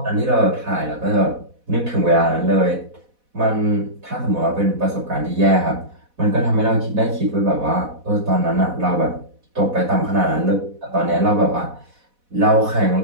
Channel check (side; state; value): left; late; 4.1 ms